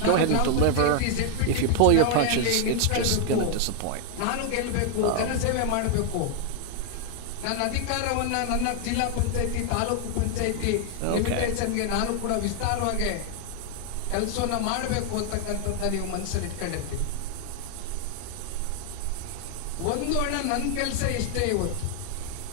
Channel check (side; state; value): both; different; correlation 0.00